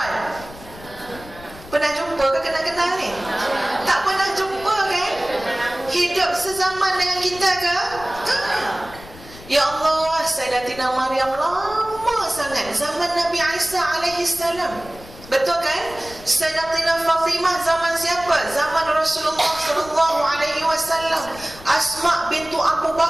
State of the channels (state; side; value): noise; left; rumble, 18 dB below the sound